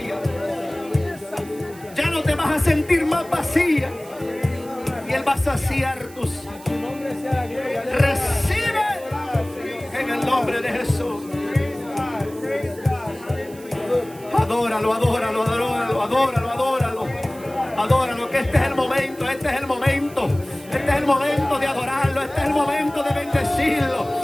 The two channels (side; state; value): right; noise; hiss, 21 dB below the sound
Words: Ya no te vas a sentir más vacía. Y Él va a saciar tus. Recibe en el nombre de Jesús. Adóralo, que este es el momento, de adorarlo, este es el momento de bendecirlo,